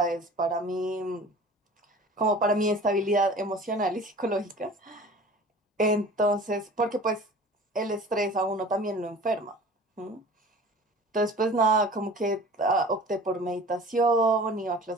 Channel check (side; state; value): both; normal; correlation 0.43